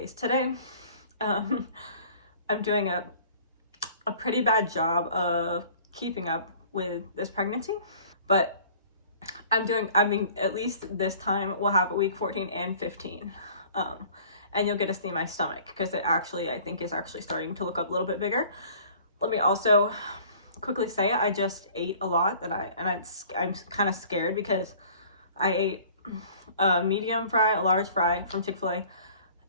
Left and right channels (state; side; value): inverted; both; correlation -0.50